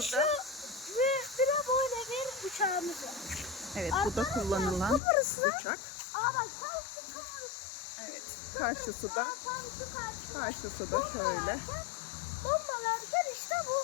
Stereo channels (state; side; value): drops out; right; at 5.0 s